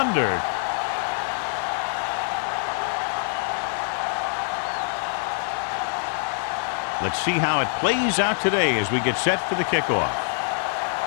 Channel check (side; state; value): right; silent; 59 dB below the other